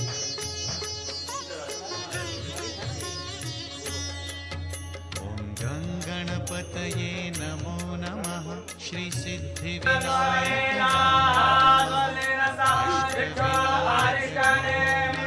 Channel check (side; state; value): both; identical; correlation 1.00